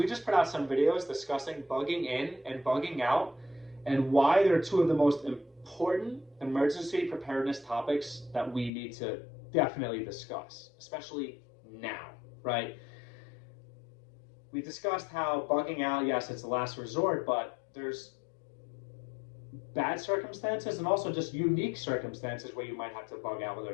just put out some videos discussing bugging in and bugging out and why they're two of the most important emergency preparedness topics that we need to definitely discuss, especially now, right? We discussed how bugging out, yes, it's the last resort, but there's bad circumstances and also just unique circumstances where you might have to bug out, whether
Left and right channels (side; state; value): right; drops out; at 8.7 s